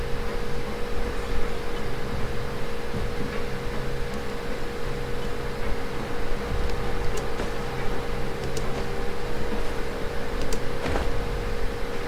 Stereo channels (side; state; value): both; identical; correlation 1.00